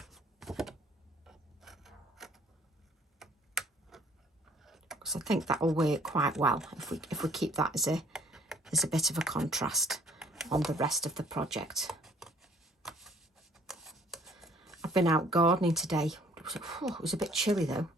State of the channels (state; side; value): normal; both; correlation 0.58